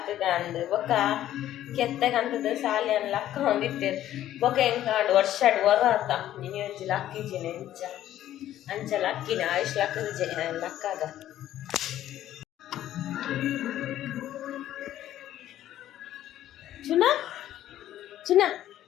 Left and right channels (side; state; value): right; quieter; 12.6 dB